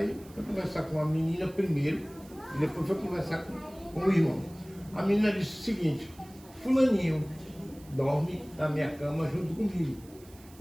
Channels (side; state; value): right; noise; hiss, 24 dB below the sound